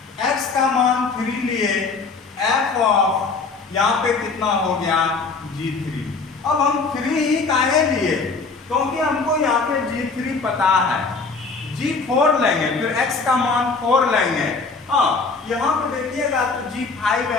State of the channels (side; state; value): right; quieter; 4.3 dB